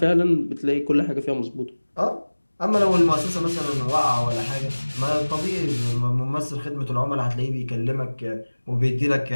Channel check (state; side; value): inverted; both; correlation -1.00